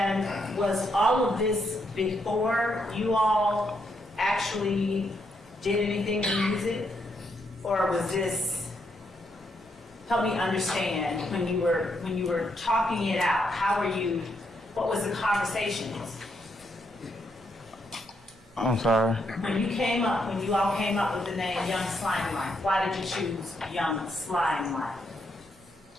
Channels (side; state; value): both; normal; correlation 0.78